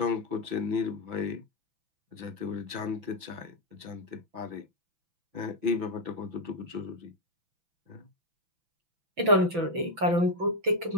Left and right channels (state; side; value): late; left; 6.0 ms